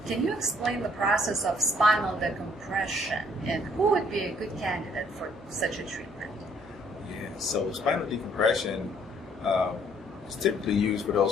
Can you explain the process of spinal decompression, and who would be a good candidate for such a treatment? Yeah, so spinal decompression is typically used for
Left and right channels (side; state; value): both; normal; correlation 0.63